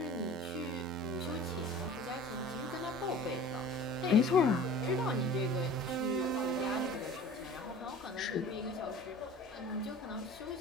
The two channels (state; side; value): normal; both; correlation 0.42